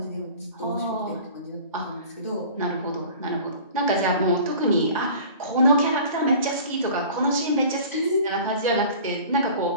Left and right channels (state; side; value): inverted; both; correlation -0.43